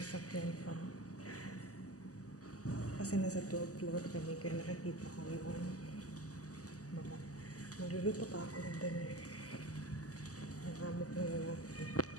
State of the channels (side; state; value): right; late; 0.66 ms